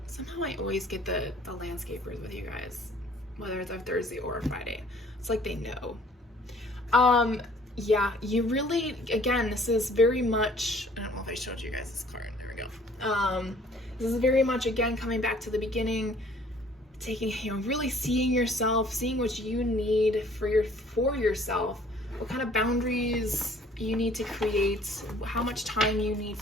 somehow I always get the landscapers with you guys, whether it's a Thursday or a Friday. It's like they know. Yeah, you really, again, this is very much, I don't know if I showed you guys this card. There we go. This is very much, again, coming back to the beginning, taking, really seeing yourself, seeing what you need for yourself. What kind of boundaries you need to create, how much time you need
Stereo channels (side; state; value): both; normal; correlation 0.56